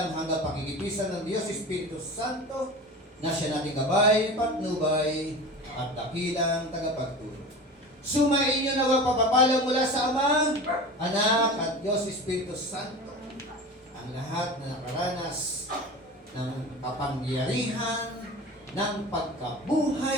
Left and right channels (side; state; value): both; normal; correlation 0.33